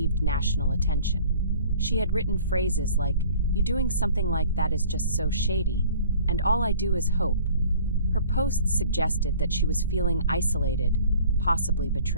national attention. She had written phrases like, "You doing something like that is just so shady," and "all I do is hope." Her posts suggested that she was feeling isolated, possibly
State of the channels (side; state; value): both; inverted; correlation -0.50